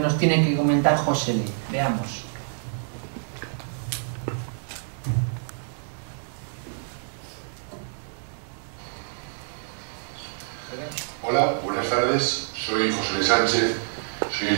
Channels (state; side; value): silent; left; digital silence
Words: tiene que comentar José L. Veamos. Hola, buenas tardes. Soy José L. Sánchez, soy